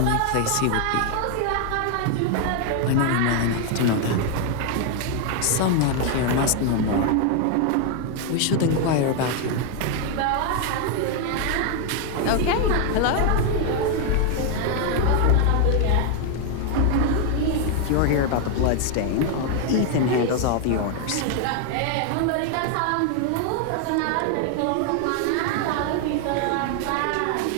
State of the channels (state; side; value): different; both; correlation 0.00